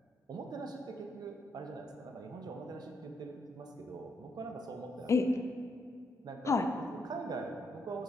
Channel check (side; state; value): both; normal; correlation 0.76